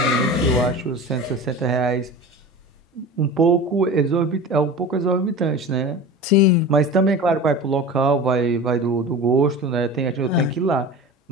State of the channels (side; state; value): both; normal; correlation 0.33